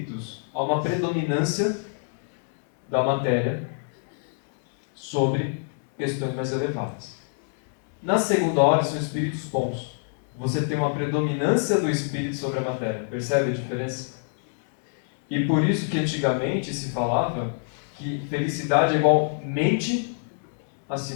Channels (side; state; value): right; silent; digital silence